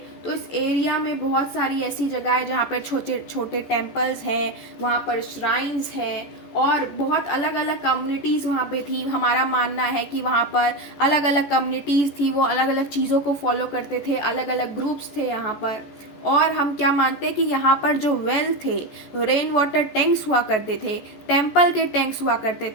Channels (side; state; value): right; late; 14 ms